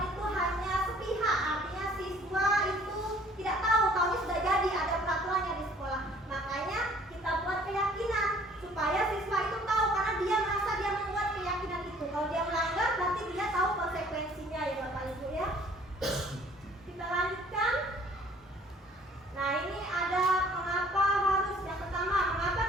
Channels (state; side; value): normal; both; correlation 0.56